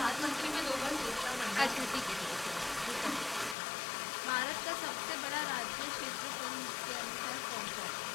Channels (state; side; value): drops out; right; at 3.6 s